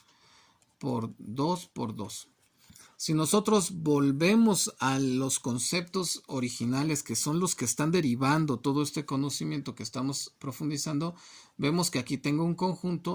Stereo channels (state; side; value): identical; both; correlation 1.00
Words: por 2 por 2. Si nosotros volvemos a los conceptos originales, que son los que están derivando todo este conocimiento que estamos profundizando, vemos que aquí tengo un